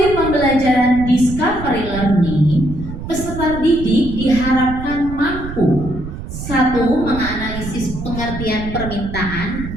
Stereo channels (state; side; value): noise; right; rumble, 9 dB below the sound